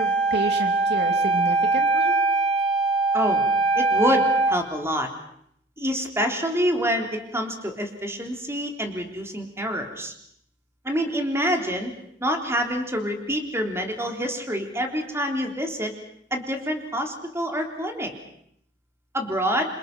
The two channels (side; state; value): both; normal; correlation 0.48